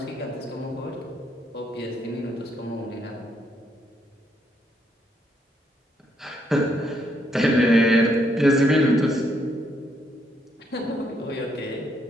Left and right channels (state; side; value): normal; both; correlation 0.74